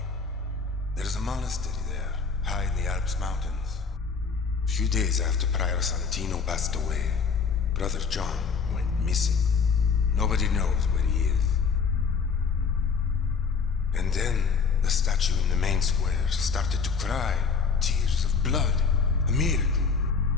There's a monastery there, high in the Alps mountains. A few days after Prior Santino passed away, Brother John went missing. Nobody knows where he is. And then the statue in the main square started to cry tears of blood. A miracle.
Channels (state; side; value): quieter; right; 5.5 dB